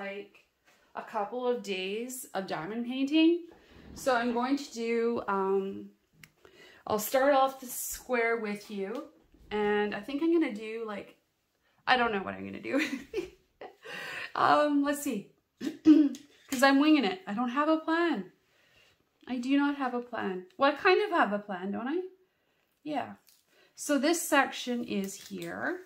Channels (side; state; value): both; identical; correlation 1.00